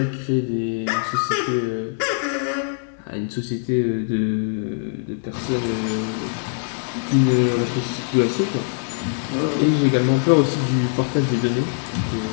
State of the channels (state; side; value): silent; right; digital silence